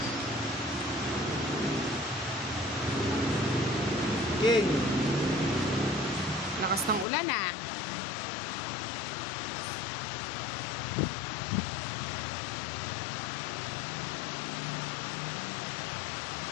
King. Lakas ng ulan ah.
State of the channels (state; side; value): drops out; right; at 7.1 s